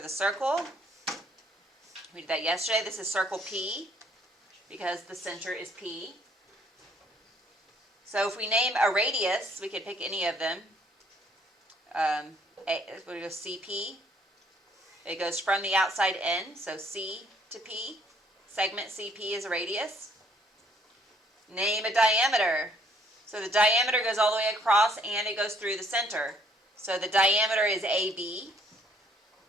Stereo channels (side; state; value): both; normal; correlation 0.64